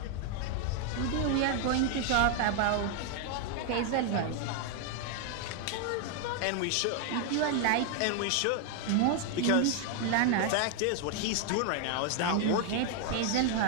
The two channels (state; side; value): different; both; correlation 0.00